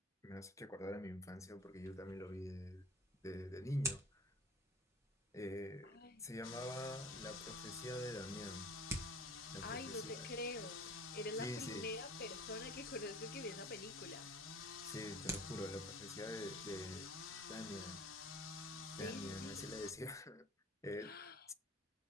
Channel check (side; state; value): both; normal; correlation 0.44